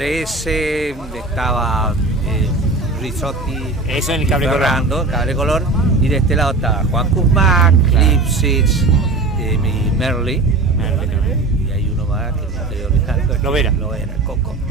estaba Rizotti, eso en el Cable Color. Fernando, Cable Color, y de este lado estaba Juan Kuzmac, Lipsitz, y Merly. Y hay uno más que no estoy olvidando. Lovera, Coco.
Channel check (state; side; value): quieter; left; 3.4 dB